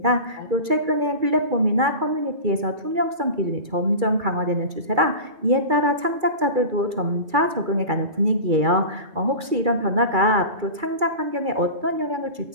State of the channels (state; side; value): late; left; 2.3 ms